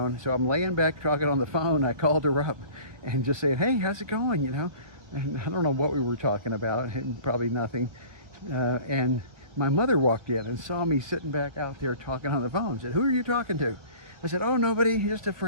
So I'm laying back talking on the phone. I called her up and just saying, hey, how's it going? You know, and I don't know what we were talking about, probably nothing. And my mother walked in and saw me sitting back out there talking on the phone. Said, who are you talking to? I said, oh, nobody, just a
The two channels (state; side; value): late; left; 1.3 ms